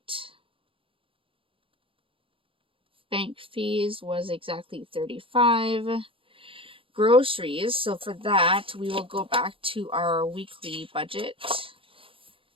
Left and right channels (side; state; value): left; late; 0.26 ms